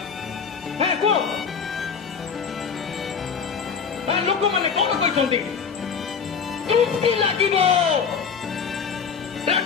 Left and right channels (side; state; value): right; quieter; 6.2 dB